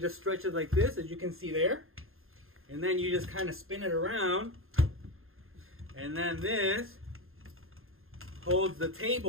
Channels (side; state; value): left; late; 0.61 ms